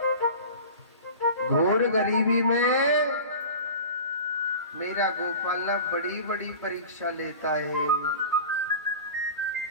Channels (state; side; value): inverted; both; correlation -0.35